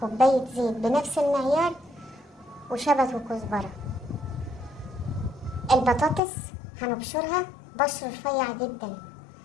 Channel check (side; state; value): right; drops out; at 6.2 s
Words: زيت بنفس المعيار، وشبت وكزبرة. البطاطس هنبشرها بشر رفيع جدا،